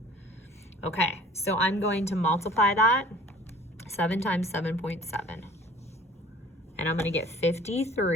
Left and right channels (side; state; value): both; normal; correlation 0.49